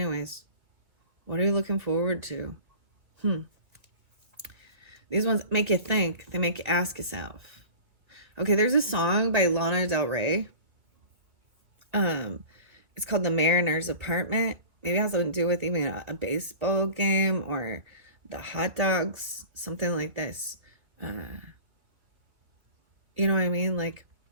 What are you looking forward to? These ones make you think. They make you ask yourself. Okay, there's a song by Lana Del Rey. It's called The Mariner's Apartment. Maybe it has something to do with even a baseball game or the hot dogs, something like this. You know what I mean? Like,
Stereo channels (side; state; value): left; late; 2.3 ms